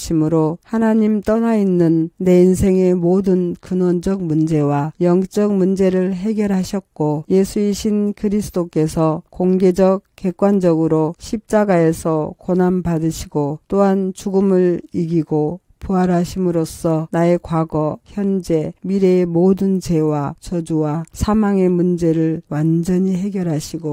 하나님 떠나 있는 내 인생의 모든 근원적 문제와 영적 문제를 해결하셨고, 예수이신 그리스도께서 공개적 객관적으로 십자가에서 고난 받으시고 또한 죽음을 이기고 부활하심으로써 나의 과거, 현재, 미래의 모든 죄와 저주와 사망의 문제를 완전히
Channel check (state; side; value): identical; both; correlation 1.00